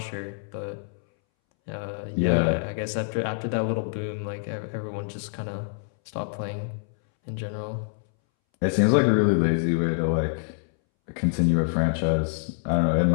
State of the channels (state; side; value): silent; right; 61 dB below the other